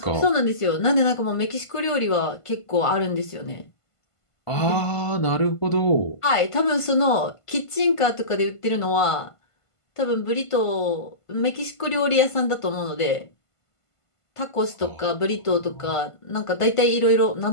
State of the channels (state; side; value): late; right; 1.5 ms